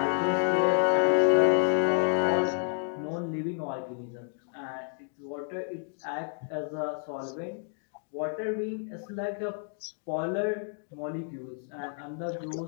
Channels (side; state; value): right; silent; 58 dB below the other